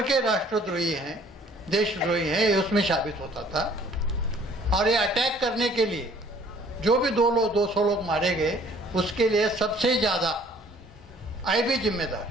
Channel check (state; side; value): normal; both; correlation 0.56